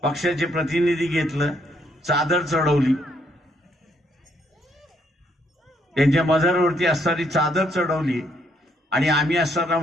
पक्षाचे प्रतिनिधी घेतलं, चादर चढवली. त्यांच्या मजारवरती असणारी चादर चढवली आणि आम्ही असताना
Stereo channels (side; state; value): both; normal; correlation 0.72